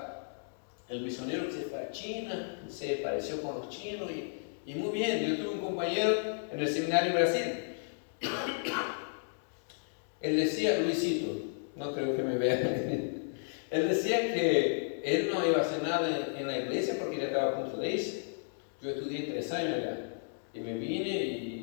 El misionero que se fue a China, se pareció con los chinos y muy bien. Yo tuve un compañero en el seminario en Brasil. Él decía, Luisito, no creo que me vea. Él decía que él no iba a hacer nada en la iglesia porque ya estaba a punto de irse. Yo estudié 3 años allá y me vine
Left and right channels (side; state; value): right; silent; digital silence